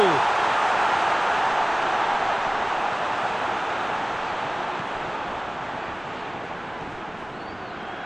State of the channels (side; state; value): right; noise; rumble, 25 dB below the sound